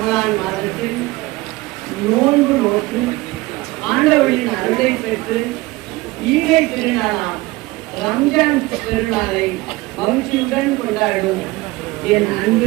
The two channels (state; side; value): quieter; left; 20.6 dB